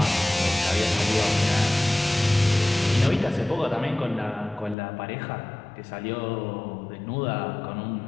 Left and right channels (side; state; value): right; drops out; at 4.8 s